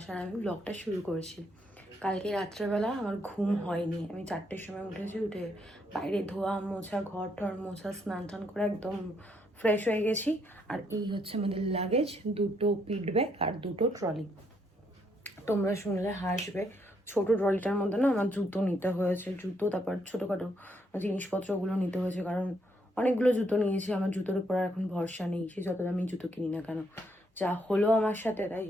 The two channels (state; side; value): normal; both; correlation 0.74